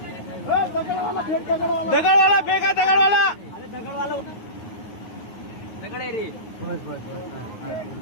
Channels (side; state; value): right; late; 9.4 ms